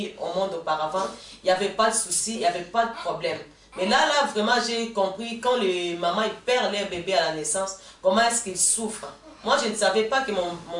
au monde auparavant, il n'y avait pas de souci, il n'y avait pas de problème. Mais là, vraiment, j'ai compris quand les mamans ils perdent leur bébé à la naissance, comment est-ce qu'ils souffrent. Moi, je ne savais pas que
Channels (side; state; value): both; identical; correlation 1.00